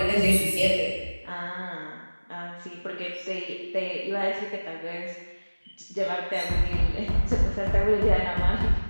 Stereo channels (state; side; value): inverted; both; correlation -1.00